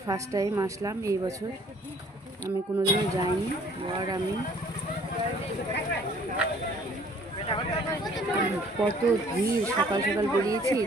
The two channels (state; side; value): normal; both; correlation 0.56